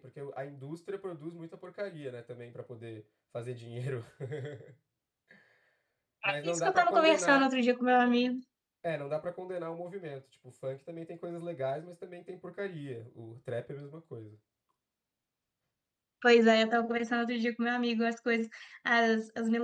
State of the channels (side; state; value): both; identical; correlation 1.00